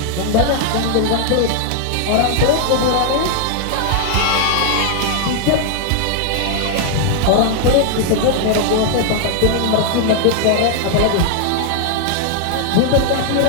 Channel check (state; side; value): different; both; correlation 0.00